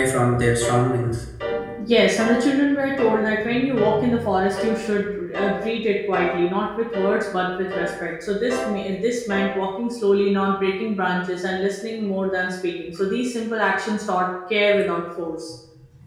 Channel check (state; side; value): identical; both; correlation 1.00